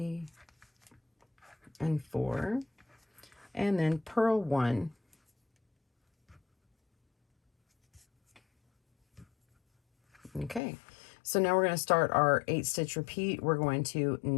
and 4, and then purl 1. Okay, so now we're going to start our 8 stitch repeat. We're going to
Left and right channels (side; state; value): right; drops out; at 10.6 s